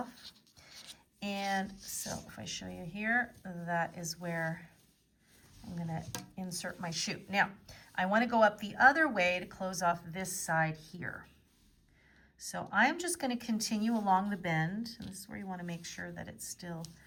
And so if I show you here, that is where I'm gonna insert my shoe. Now, I wanna go up the other way to close off this side here. So I'm just gonna continue along the bend, and this is where you wanna make sure that it's still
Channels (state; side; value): identical; both; correlation 1.00